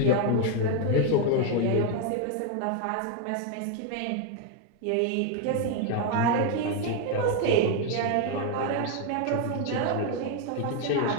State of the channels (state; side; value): different; both; correlation 0.01